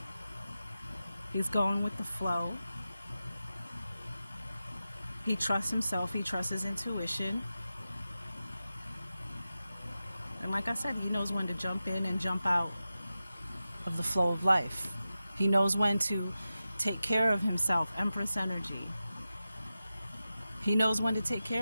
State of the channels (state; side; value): inverted; both; correlation -0.93